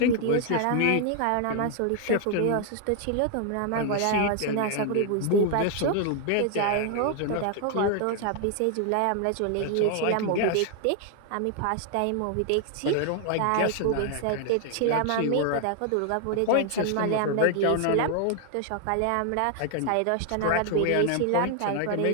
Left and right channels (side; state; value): both; different; correlation 0.00